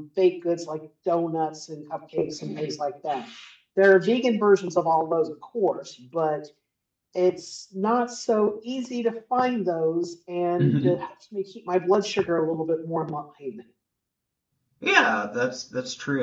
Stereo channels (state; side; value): identical; both; correlation 1.00